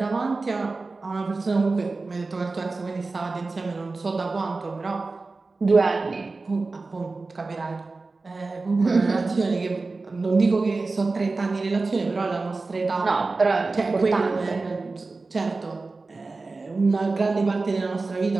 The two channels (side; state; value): left; quieter; 3.7 dB